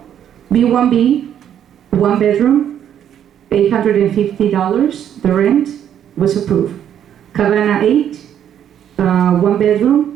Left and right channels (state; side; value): quieter; left; 9.7 dB